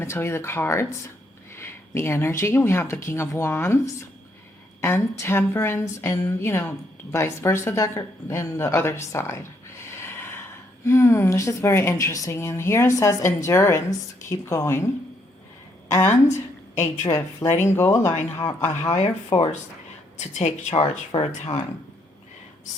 to tell you the cards, the energy. We have the King of Wands and Temperance, and vice versa, and the other side. This is very interesting. And here it says endurance, keep going, and a drift, letting go, allowing a higher force to take charge for a time.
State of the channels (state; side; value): normal; both; correlation 0.73